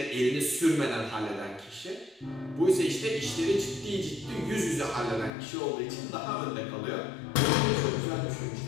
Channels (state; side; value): drops out; right; at 5.3 s